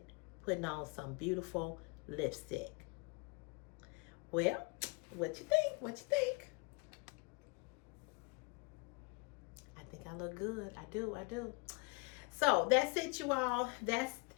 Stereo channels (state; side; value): quieter; right; 29.5 dB